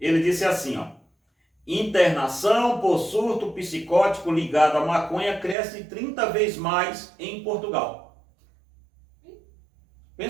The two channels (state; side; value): drops out; left; at 5.6 s